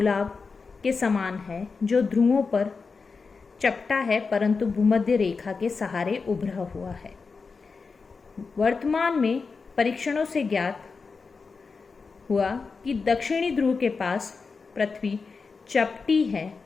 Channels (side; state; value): right; quieter; 4.7 dB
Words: के समान है जो ध्रुवों पर चपटा है, परंतु भूमध्य रेखा के सहारे उभरा हुआ है। वर्तमान में परीक्षणों से ज्ञात हुआ कि दक्षिणी ध्रुव के पास पृथ्वी चपटी है